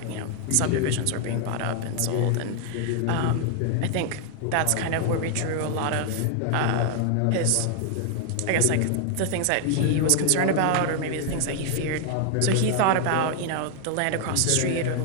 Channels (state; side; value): different; both; correlation 0.00